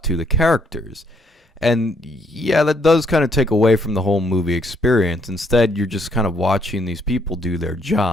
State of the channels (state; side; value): normal; both; correlation 0.69